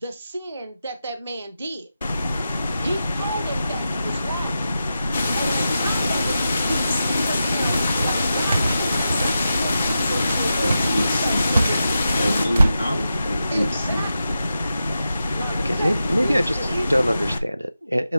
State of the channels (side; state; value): both; inverted; correlation -0.90